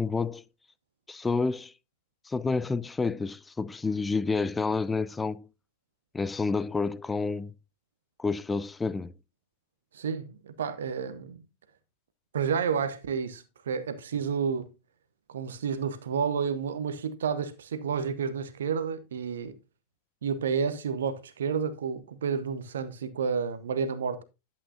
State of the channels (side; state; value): both; normal; correlation 0.07